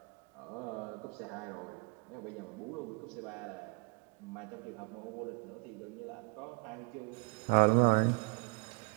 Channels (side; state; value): left; quieter; 33.3 dB